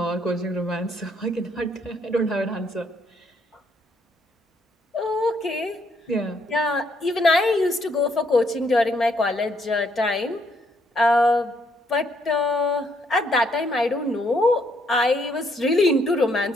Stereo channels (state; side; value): normal; both; correlation 0.71